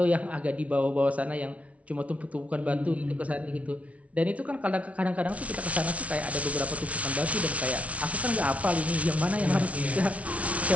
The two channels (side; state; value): left; late; 0.065 ms